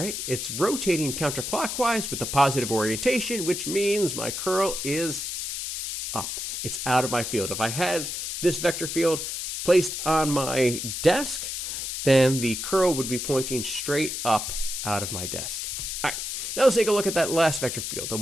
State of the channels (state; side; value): noise; left; hiss, 4 dB below the sound